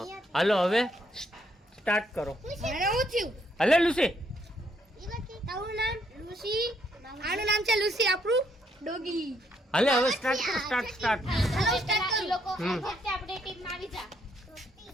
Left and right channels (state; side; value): normal; both; correlation 0.72